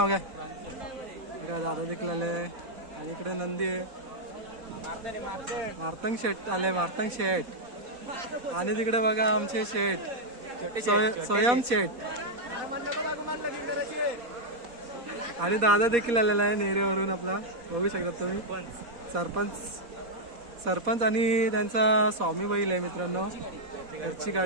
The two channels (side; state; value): left; late; 4.1 ms